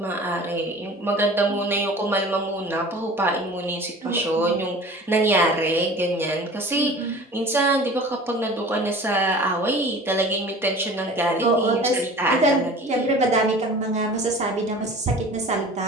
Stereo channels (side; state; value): both; normal; correlation 0.42